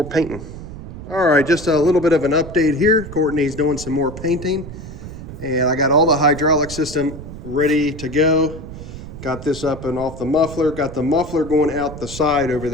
painting. All right, just a little bit of an update here. Courtney's doing some more painting. And I got all the hydraulic system ready to go. Got this up and off the muffler. Got the muffler going out the side over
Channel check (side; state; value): right; noise; rumble, 12 dB below the sound